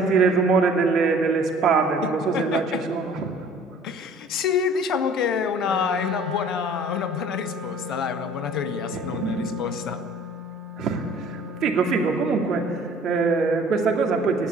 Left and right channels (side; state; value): both; normal; correlation 0.50